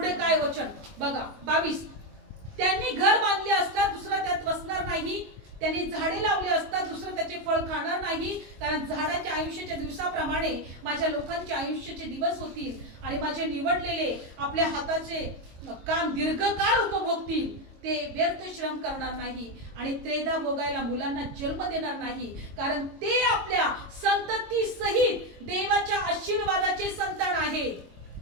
काय वचन बघा, 22, त्यांनी घर बांधले असता दुसरा त्यात बसणार नाही, त्यांनी झाडे लावले असता दुसरं त्याचे फळ खाणार नाही. कारण झाडाच्या आयुष्याच्या दिवसाप्रमाणे माझ्या लोकांचे आयुष्याचे दिवस होतील आणि माझे निवडलेले आपल्या हाताचे काम दीर्घकाळ उपभोगतील. ते व्यर्थ श्रम करणार नाही आणि त्रेधा भोगायला मुलांना जन्म देणार नाही. कारण ते आपल्या संतती सहित देवाच्या आशीर्वादाचे संतान आहेत.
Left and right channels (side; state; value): left; late; 22 ms